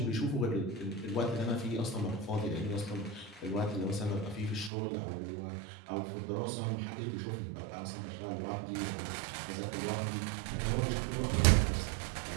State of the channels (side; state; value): left; drops out; at 4.7 s